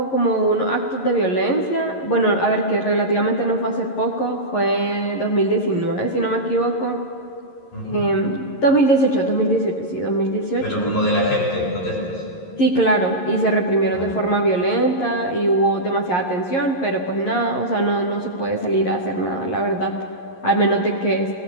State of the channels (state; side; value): late; right; 11 ms